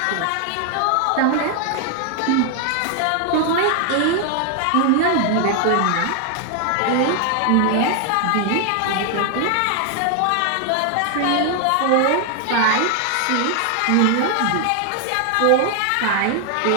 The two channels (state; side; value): different; both; correlation 0.00